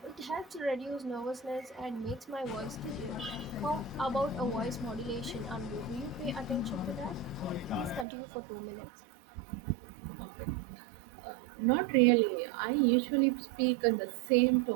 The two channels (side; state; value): left; drops out; at 8.1 s